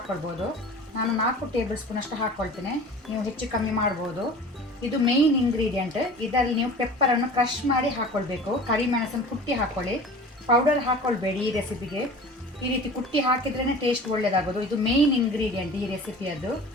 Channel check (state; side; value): normal; both; correlation 0.40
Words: ನಾನು 4 ಟೇಬಲ್ ಸ್ಪೂನ್ ಅಷ್ಟು ಹಾಕ್ಕೊಳ್ತೇನೆ. ನೀವು ಹೆಚ್ಚು ಕಮ್ಮಿ ಮಾಡ್ಬೋದು. ಇದು ಮೇಯ್ನ್ ಇಂಗ್ರೀಡಿಯೆಂಟ್. ಇದರಲ್ಲಿ ನೀವು ಪೆಪ್ಪರನ್ನು ಕ್ರಷ್ ಮಾಡಿ ಹಾಕ್ಕೊಳ್ಬೇಕು. ಕರಿಮೆಣಸನ್ನು ಕುಟ್ಟಿ ಹಾಕ್ಕೊಳ್ಳಿ, ಪೌಡರ್ ಹಾಕ್ಕೊಳ್ಬೇಡಿ ಈ ರೆಸಿಪಿಗೆ. ಈ ರೀತಿ ಕುಟ್ಟಿ ಹಾಕಿದ್ರೇ ಟೇಸ್ಟ್ ಒಳ್ಳೆಯದಾಗೋದು. ಇದು ಮೇಯ್ನ್ ಇಂಗ್ರೀಡಿಯೆಂಟ್ ಈ ರೆಸಿಪಿಯದ್ದು.